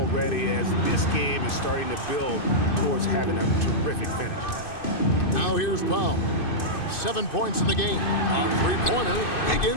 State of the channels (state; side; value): late; right; 2.6 ms